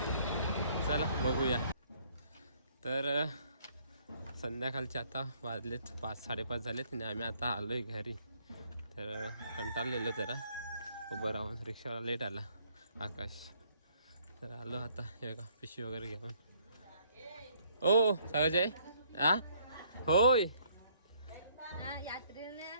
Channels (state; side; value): inverted; both; correlation -0.65